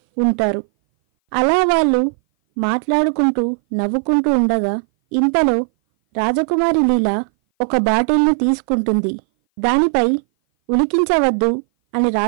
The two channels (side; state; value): left; silent; 58 dB below the other